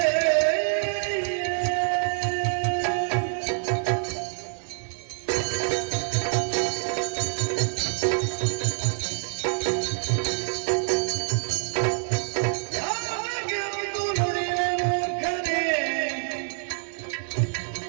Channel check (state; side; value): silent; left; 56 dB below the other